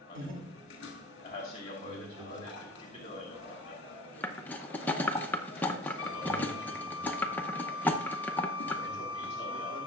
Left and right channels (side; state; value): both; normal; correlation 0.42